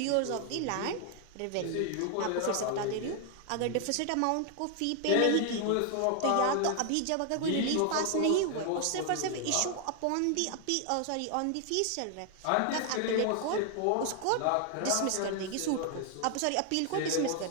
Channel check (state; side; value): different; both; correlation 0.00